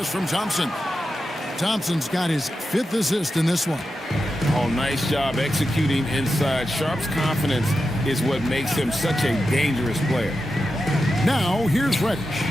from Thompson. Thompson's got his 5th assist in this one. Oh, nice job executing inside. Sharp's confidence is what makes him such a dangerous player. Now, here's Reddish.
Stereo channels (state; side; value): normal; both; correlation 0.90